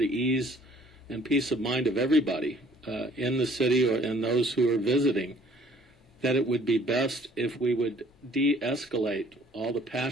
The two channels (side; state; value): both; normal; correlation 0.58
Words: ease and peace of mind of everybody in the city or and those who are visiting, that it would be best if we would de-escalate all the